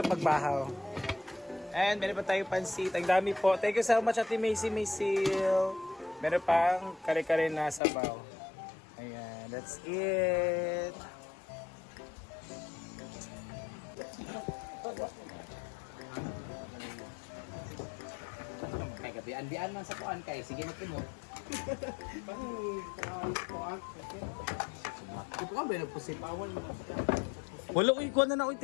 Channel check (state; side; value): drops out; right; at 7.8 s